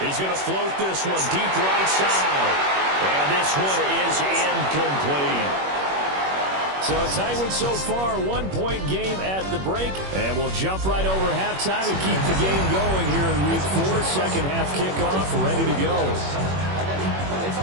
He's going to float this one deep right side. And this one is incomplete. So a tight one so far, 1-point game at the break. And we'll jump right over halftime and keep the game going here in week 4. Second half kickoff, ready to go.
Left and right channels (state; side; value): late; left; 21 ms